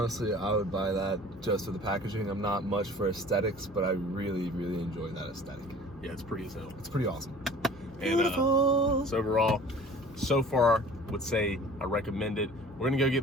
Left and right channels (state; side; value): normal; both; correlation 0.46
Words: I would buy that just for the packaging. I'm not much for aesthetics, but I really, really enjoy that aesthetic. Yeah, it's pretty as hell. It's pretty awesome. And so overall, so far, would say I recommend it. We're gonna go